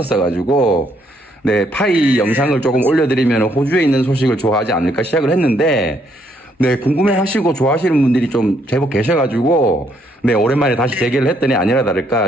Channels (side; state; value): both; normal; correlation 0.71